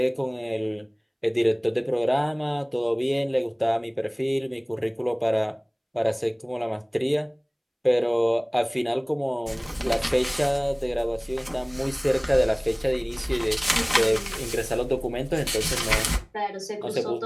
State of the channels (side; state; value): both; identical; correlation 1.00